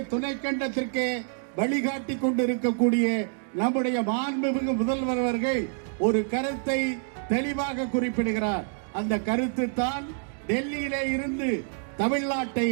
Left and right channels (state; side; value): silent; left; 60 dB below the other